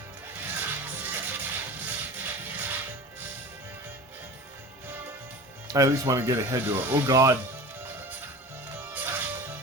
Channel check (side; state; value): both; normal; correlation 0.35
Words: I at least want to get ahead to it. Oh god.